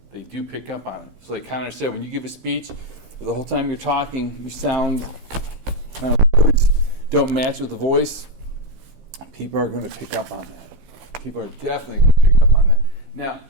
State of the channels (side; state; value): left; late; 15 ms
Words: they do pick up on it. So like Connor said, when you give a speech, the whole time you're talking, you sound, words don't match with the voice, people are going to pick up on that. People are definitely going to pick up on that. Now,